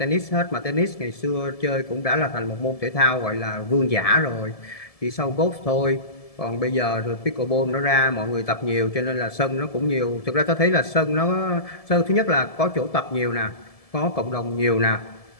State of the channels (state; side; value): late; right; 1.7 ms